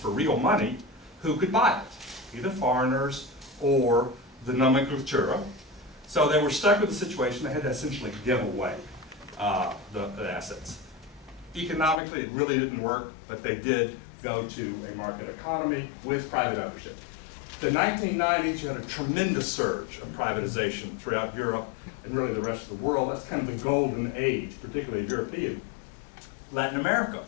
real money, who could buy it? Either foreigners or the nomenclatura. So they were stuck with the situation. They had to essentially give away the assets. Economically, it really didn't work, but they did go to a market economy with private ownership. The 1990s, you had a tremendous surge of privatization throughout Europe and really the rest of the world. That's kind of the golden age, particularly European. Latin America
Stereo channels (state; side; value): drops out; right; at 12.0 s